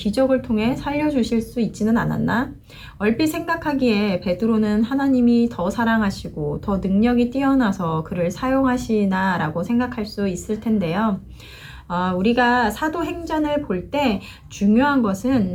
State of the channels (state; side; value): identical; both; correlation 1.00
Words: 통해 살려주실 수 있지는 않았나? 얼핏 생각하기에 베드로는 하나님이 더 사랑하시고 더 능력이 뛰어나서 그를 사용하시나 라고 생각할 수 있을 텐데요. 우리가 사도행전을 볼 때 중요한 것은